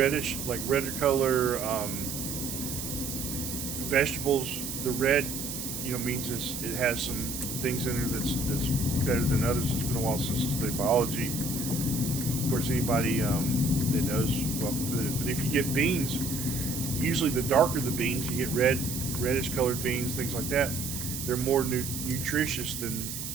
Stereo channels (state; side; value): noise; right; hiss, 6 dB below the sound